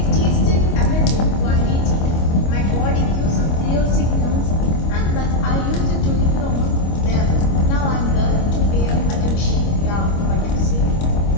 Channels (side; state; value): right; late; 25 ms